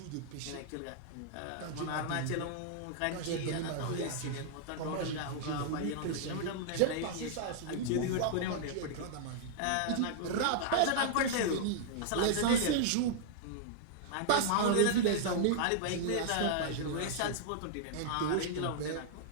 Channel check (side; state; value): both; different; correlation -0.01